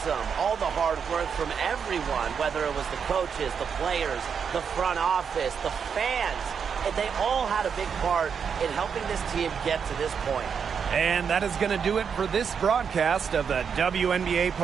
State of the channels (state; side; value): quieter; left; 6.8 dB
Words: All the hard work from everyone, whether it was the coaches, the players, the front office, the fans, and they all had a big part in helping this team get to this point. And that is going to do it for this broadcast of the WNBA